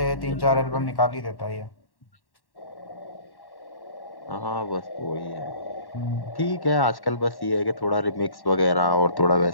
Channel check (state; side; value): late; right; 1.1 ms